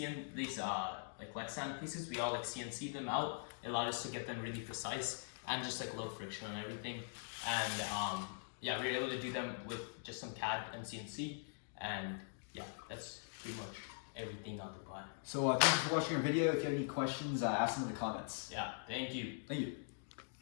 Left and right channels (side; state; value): right; silent; digital silence